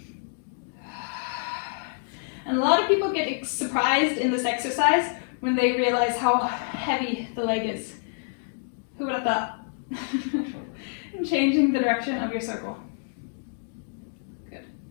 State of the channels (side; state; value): right; silent; digital silence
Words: And a lot of people get surprised in this exercise when they realize how heavy the leg is. Who would have thought? And changing the direction of your circle. Good.